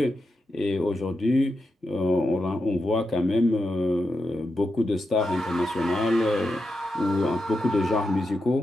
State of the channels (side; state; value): both; normal; correlation 0.87